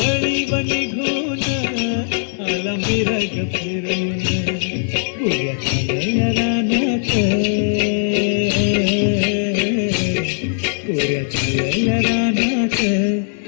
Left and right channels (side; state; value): right; silent; 64 dB below the other